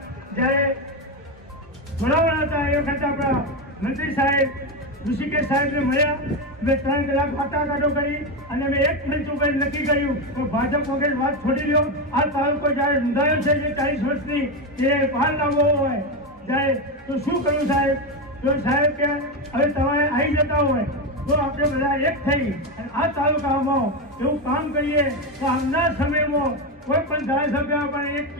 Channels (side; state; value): both; normal; correlation 0.12